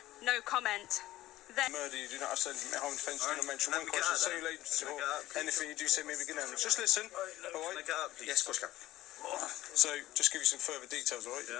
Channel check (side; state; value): right; quieter; 15.7 dB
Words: no comment. Murder, you do not have to say harm defence, you do not mention one question, say or anything you do say maybe begin. Just listen, alright? Yes, of course, Cap. So, just give you some further details, alright?